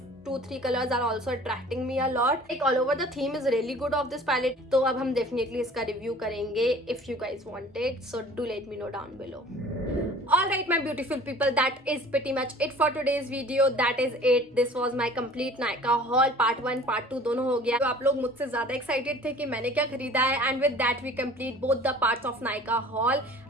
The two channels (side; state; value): both; normal; correlation 0.47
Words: 2-3 colors are also attracting me a lot. Like all over the theme is really good of this palette. तो अब हम definitely इसका review करेंगे if you guys want it. So do let me know down below. Alright my beautiful people, that is pretty much it for today's video. That is it. This was my complete Nykaa haul. Part 1 Part 2 दोनों हो गया. तो आप लोग मुझसे ज़्यादा excited थे कि मैंने क्या खरीदा है, and with that we complete both the parts of Nykaa haul.